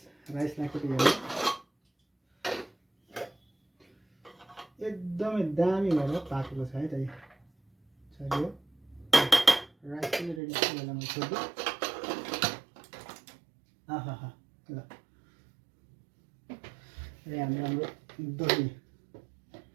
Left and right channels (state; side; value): drops out; left; at 10.4 s